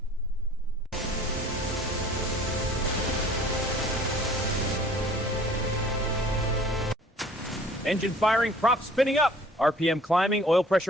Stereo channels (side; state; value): both; normal; correlation 0.52